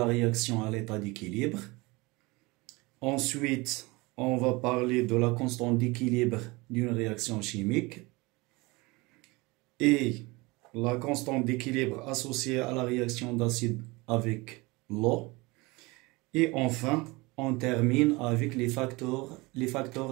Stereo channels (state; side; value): quieter; left; 24.0 dB